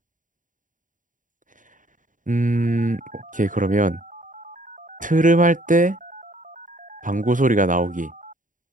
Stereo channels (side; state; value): left; late; 0.38 ms